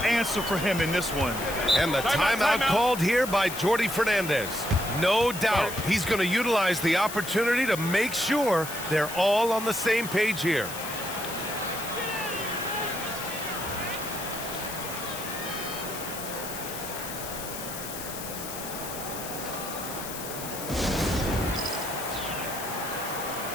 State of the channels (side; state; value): left; noise; hiss, 9 dB below the sound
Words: for him in this one. And the timeout called here by Jordi Fernandez. No doubt he's going to utilize the opportunity to make sure they're all on the same page here.